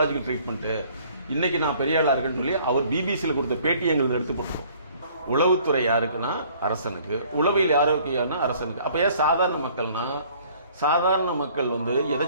ட்ரீட்மெண்ட்டு, இன்னைக்கு நான் பெரிய ஆளா இருக்குன்னு சொல்லி அவர் பிபிசியில் கொடுத்த பேட்டி எங்களுக்கு எடுத்து போட்டுருவோம். உளவுத்துறை யாருக்குன்னா அரசனுக்கு, உளவியல் ஆரோக்கியம்னா அரசனுக்கு. அப்ப ஏன் சாதாரண மக்கள்னா, சாதாரண மக்கள் வந்து எதை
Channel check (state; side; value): inverted; both; correlation -0.57